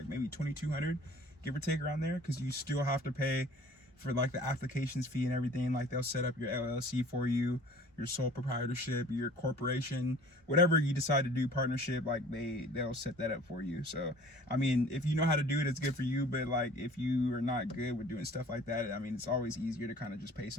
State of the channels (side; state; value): both; normal; correlation 0.49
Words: maybe $2,200, give or take around there, because you still have to pay for like the applications fee and everything. Like they'll set up your LLC for you, your sole proprietorship, your corporation, whatever you decide to do, partnership, like they'll set that up for you. So I mean, if you know how to do it, it's good for you. But like if you are not good with doing stuff like that, I mean, it's always easier to kind of just pay